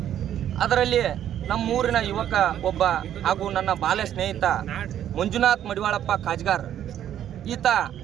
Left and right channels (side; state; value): left; quieter; 10.7 dB